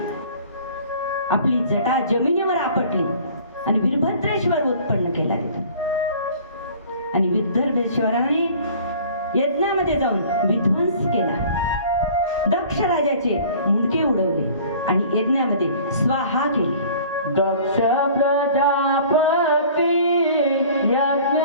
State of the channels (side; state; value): both; inverted; correlation -0.48